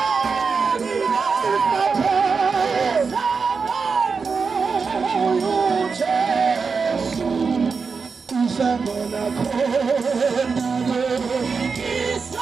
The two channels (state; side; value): quieter; left; 5.1 dB